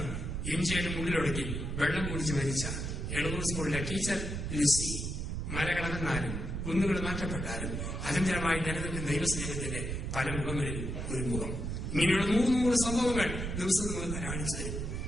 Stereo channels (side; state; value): right; noise; rumble, 4 dB below the sound